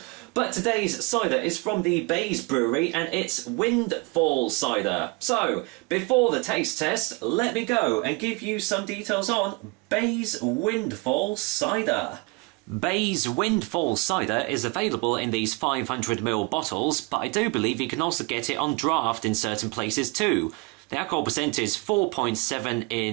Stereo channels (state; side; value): quieter; left; 27.8 dB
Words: But today's cider is from the Bays Brewery, and it's Windfall cider. So, before the taste test, let me go and give you some details on Bays Windfall cider. Bays Windfall cider is available in these 500ml bottles, but I do believe you can also get it on draft in certain places too. The alcohol percent is 4.7